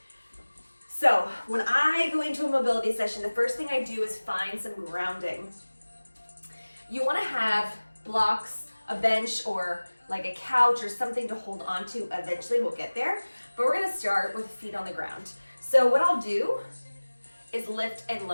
So when I go into a mobility session, the first thing I do is find some grounding. You want to have blocks, a bench, or like a couch or something to hold on to. Eventually we'll get there, but we're going to start with feet on the ground. So what I'll do is lift and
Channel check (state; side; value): inverted; both; correlation -1.00